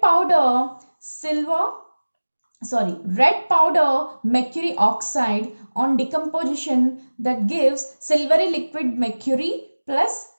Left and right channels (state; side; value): inverted; both; correlation -1.00